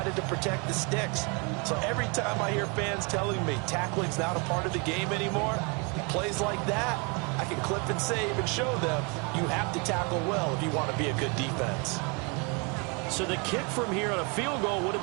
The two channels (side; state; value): left; quieter; 32.2 dB